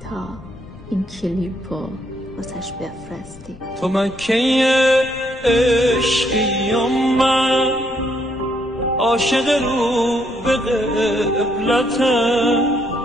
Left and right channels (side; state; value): left; noise; rumble, 19 dB below the sound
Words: تا این کلیپو واسش بفرستی. تو مکه عشقی و من عاشق رو به قبلتم،